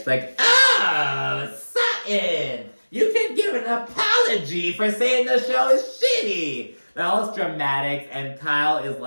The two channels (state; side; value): inverted; both; correlation -1.00